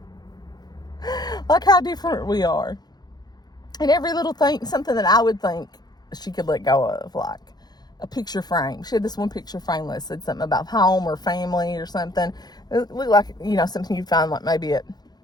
Like how different we are. And every little thing, something that I would think she could let go of, like a picture frame. She had this one picture frame that said something about home or family or something. It looked like, you know, something you'd find like maybe at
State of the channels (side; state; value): right; late; 0.20 ms